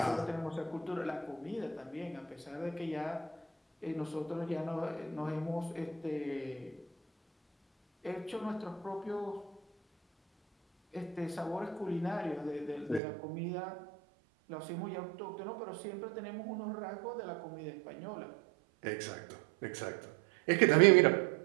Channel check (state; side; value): drops out; left; at 13.0 s